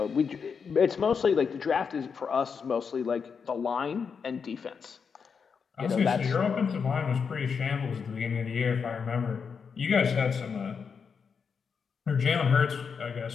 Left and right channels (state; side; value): quieter; right; 6.0 dB